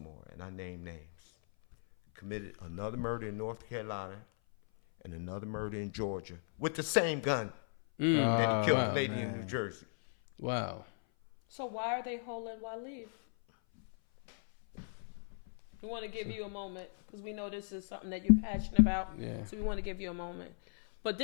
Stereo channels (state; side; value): silent; right; 53 dB below the other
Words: and I name names, committed another murder in North Carolina and another murder in Georgia with the same gun that he killed the lady in New Jersey. Wow. So why are they holding Waleed? We want to give you a moment because we know this is something that you're passionate about. Yeah. So we want to give you a moment. But